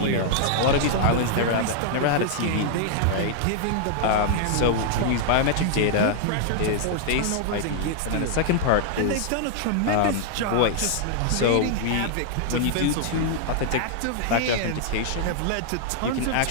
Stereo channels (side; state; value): both; different; correlation -0.01